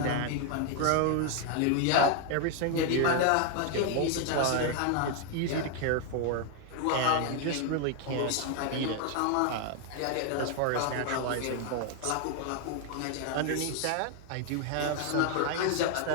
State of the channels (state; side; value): different; both; correlation 0.00